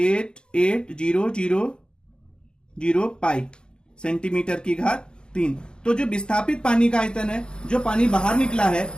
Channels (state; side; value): late; right; 0.050 ms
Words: पाई सेंटीमीटर की घात 3। तो जो विस्थापित पानी का आयतन है, जो पानी बाहर निकला है,